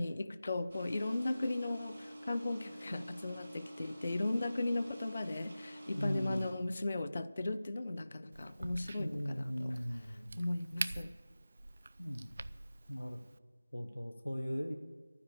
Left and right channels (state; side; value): inverted; both; correlation -0.95